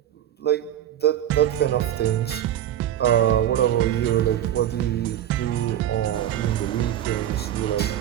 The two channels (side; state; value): left; quieter; 11.2 dB